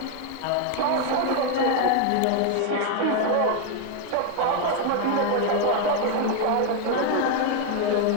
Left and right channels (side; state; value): both; different; correlation 0.01